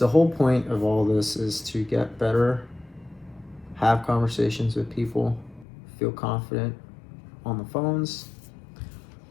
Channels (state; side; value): drops out; right; at 5.7 s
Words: whole point of all this is to get better, have conversations with people, feel confident on the phones,